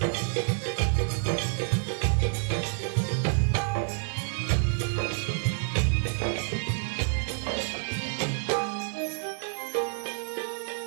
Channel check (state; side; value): silent; left; 57 dB below the other